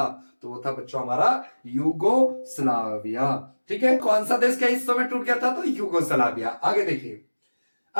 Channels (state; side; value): inverted; both; correlation -1.00